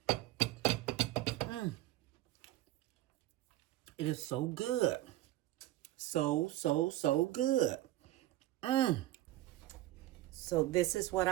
It is so good. So good. So this is what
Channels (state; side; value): quieter; left; 15.7 dB